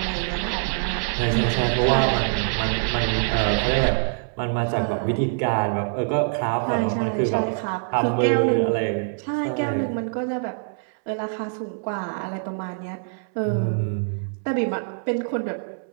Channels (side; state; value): left; silent; 62 dB below the other